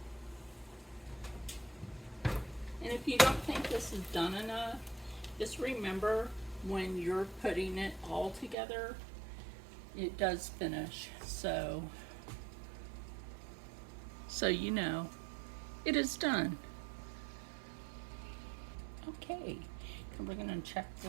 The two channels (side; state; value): left; drops out; at 8.6 s